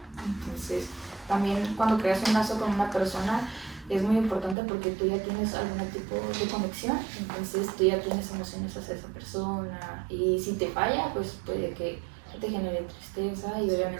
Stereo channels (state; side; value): drops out; left; at 4.5 s